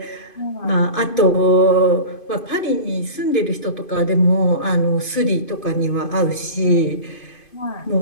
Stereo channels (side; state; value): right; late; 2.5 ms